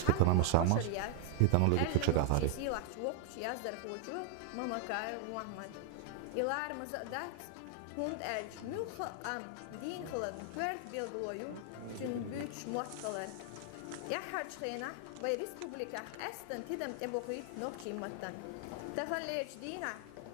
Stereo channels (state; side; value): different; both; correlation 0.00